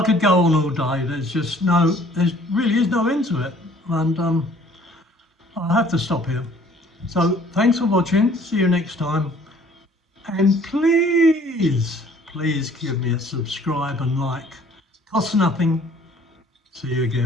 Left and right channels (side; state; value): both; normal; correlation 0.56